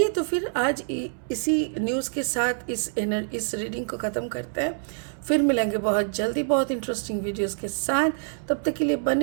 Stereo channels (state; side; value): silent; left; 61 dB below the other